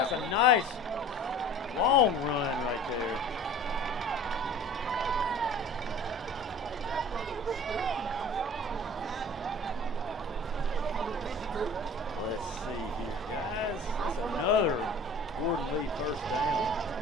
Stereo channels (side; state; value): both; normal; correlation 0.44